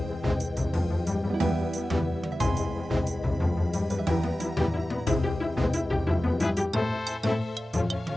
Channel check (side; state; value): both; normal; correlation 0.95